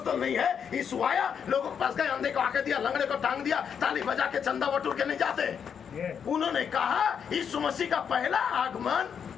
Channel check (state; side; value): quieter; right; 7.4 dB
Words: नहीं है। यीशु आया, लोगों के पास गए, अंधे को आके दिया, लंगड़े को टांग दिया, ताली बजा के चंदा बटोर के नहीं जाते। उन्होंने कहा यीशु मसीह का पहला आगमन